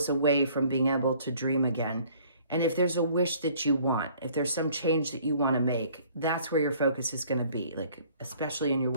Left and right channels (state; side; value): inverted; both; correlation -0.57